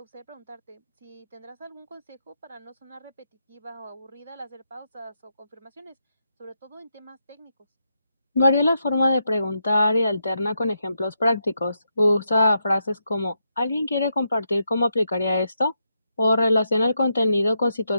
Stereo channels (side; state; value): both; inverted; correlation -0.83